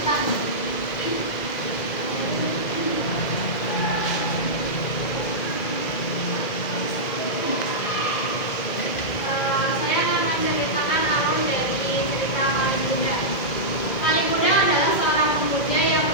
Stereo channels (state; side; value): late; right; 2.0 ms